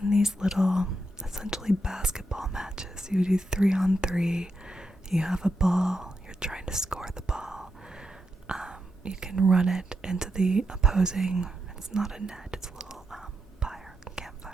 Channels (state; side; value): normal; both; correlation 0.84